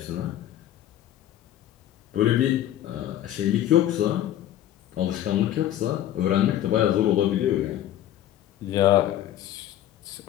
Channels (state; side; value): quieter; right; 12.3 dB